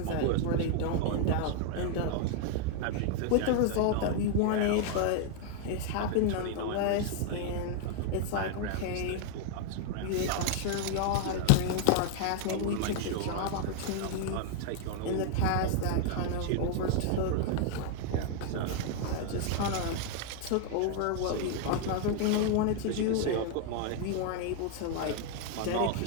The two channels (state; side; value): different; both; correlation 0.00